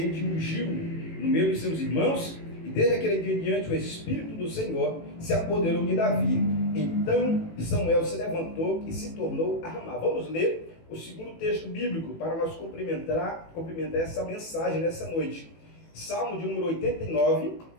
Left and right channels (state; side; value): late; right; 18 ms